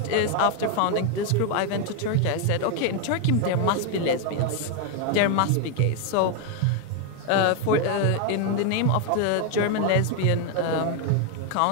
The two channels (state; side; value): different; both; correlation 0.01